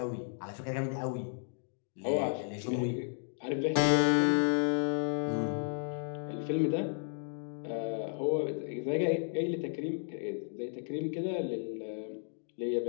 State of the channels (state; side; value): silent; right; digital silence